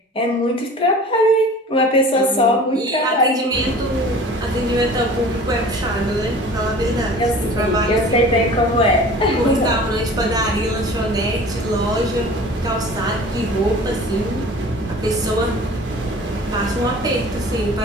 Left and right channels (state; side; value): normal; both; correlation 0.43